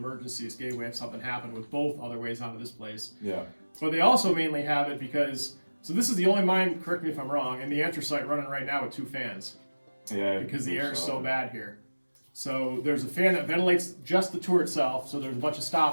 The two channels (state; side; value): inverted; both; correlation -1.00